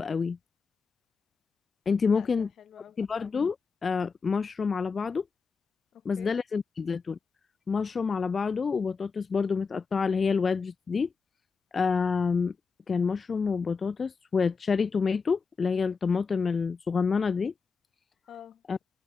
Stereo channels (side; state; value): right; quieter; 5.1 dB